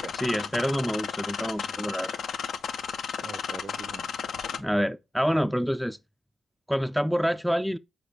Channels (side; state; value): both; normal; correlation 0.94